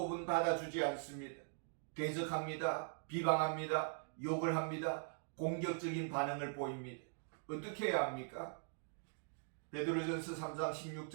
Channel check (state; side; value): silent; left; digital silence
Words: 받아주지 않습니다. 대적합니다. 비방합니다. 욕을 합니다. 공격적인 반응을 보입니다. 어떻게 해야 합니까? 베드로전서 3장